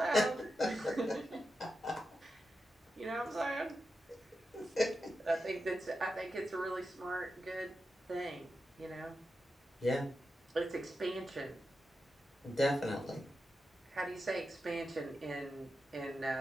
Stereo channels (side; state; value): both; normal; correlation 0.89